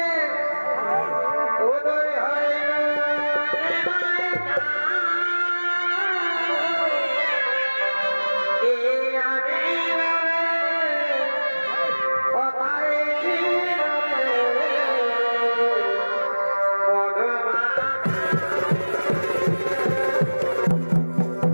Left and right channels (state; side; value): inverted; both; correlation -1.00